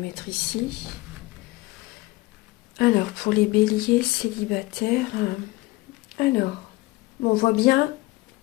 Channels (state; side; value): quieter; right; 20.9 dB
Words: ici. Alors, pour les béliers célibataires, on voit bien,